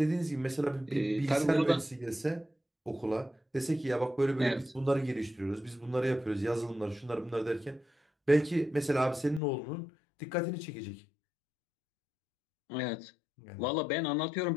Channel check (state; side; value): drops out; right; at 9.4 s